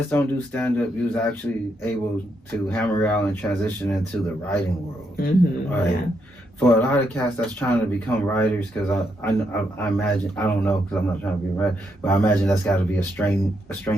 don't do stand-up. You was actually able to hammer out and transition into the writing world. Mm-hmm, right? yeah. For a lot of cats that's trying to become writers, because I imagine, I don't know because I'm not trying to be a writer, but I imagine that's got to be a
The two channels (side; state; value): both; normal; correlation 0.79